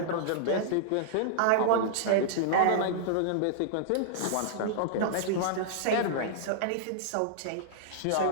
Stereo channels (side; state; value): both; different; correlation -0.02